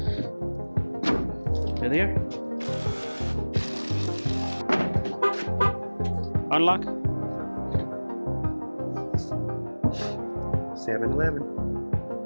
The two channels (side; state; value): both; inverted; correlation -1.00